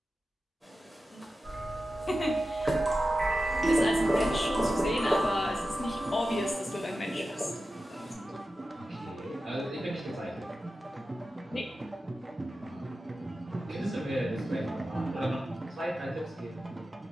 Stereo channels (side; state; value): both; normal; correlation 0.93